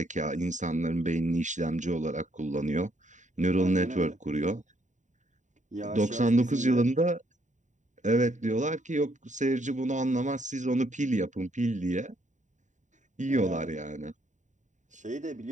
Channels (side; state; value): left; late; 0.36 ms